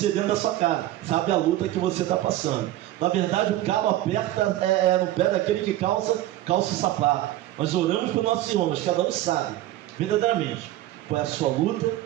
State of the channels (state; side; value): quieter; left; 14.7 dB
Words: dentro da sua casa, sabe a luta que você está passando. Na verdade, o calo aperta no pé daquele que calça o sapato. Nós oramos para os nossos irmãos, cada um sabe, verdadeiramente, qual é a sua luta